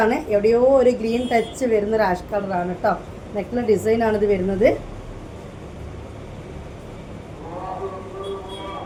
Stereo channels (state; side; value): identical; both; correlation 1.00